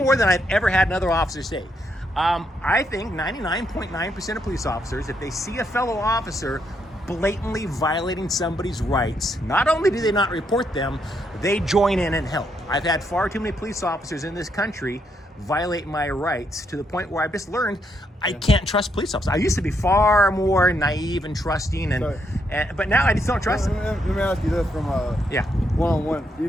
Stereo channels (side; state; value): both; normal; correlation 0.77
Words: than I've ever had another officer say. I think 99.9% of police officers, if they see a fellow officer blatantly violating somebody's rights, not only do they not report them, they join in and help. I've had far too many police officers in this country violate my rights to the point where I've just learned I can't trust police officers. I used to be far more naive and trusting, but now I just don't trust them. Let me ask you this from one-on-one. Do